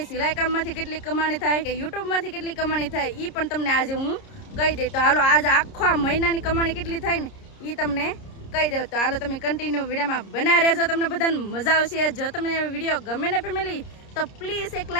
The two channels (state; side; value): late; right; 30 ms